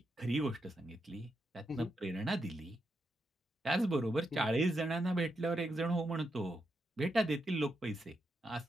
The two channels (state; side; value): normal; both; correlation 0.84